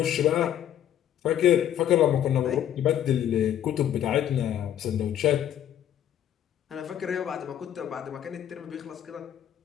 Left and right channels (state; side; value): quieter; right; 10.7 dB